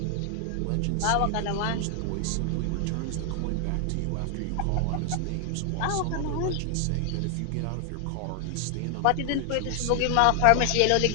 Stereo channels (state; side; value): different; both; correlation 0.00